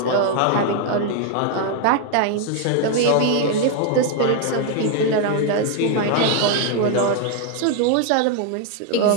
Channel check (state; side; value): different; both; correlation 0.00